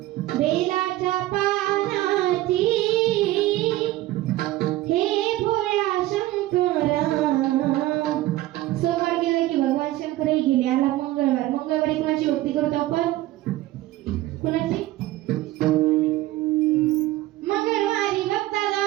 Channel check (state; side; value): quieter; left; 16.4 dB